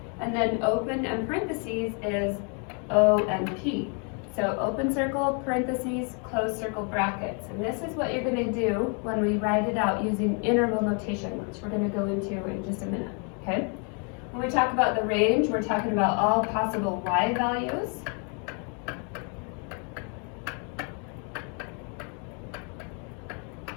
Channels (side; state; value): right; quieter; 38.3 dB